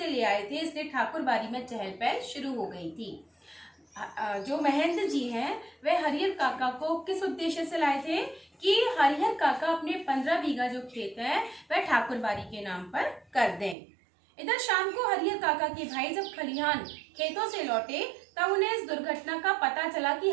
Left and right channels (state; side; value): drops out; left; at 13.8 s